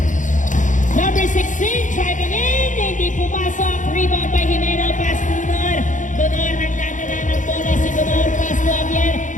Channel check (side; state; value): right; late; 0.37 ms